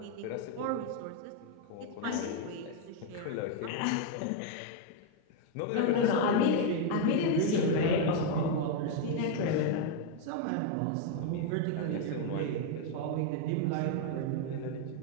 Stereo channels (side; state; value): both; different; correlation 0.01